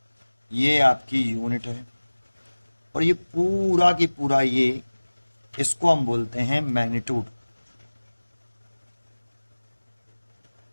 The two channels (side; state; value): both; inverted; correlation -1.00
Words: ये आपकी यूनिट है। और ये पूरा की पूरा ये, इसको हम बोलते हैं मैग्नीट्यूड।